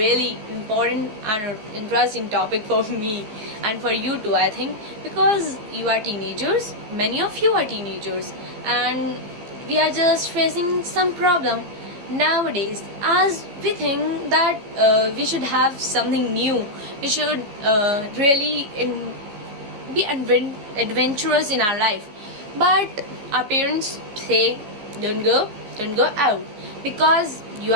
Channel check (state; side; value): late; left; 14 ms